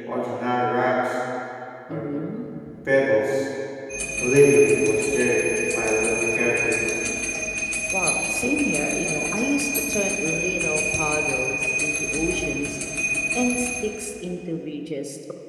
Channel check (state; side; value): identical; both; correlation 1.00